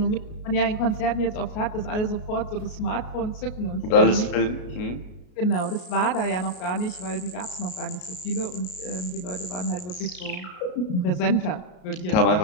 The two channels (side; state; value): right; late; 33 ms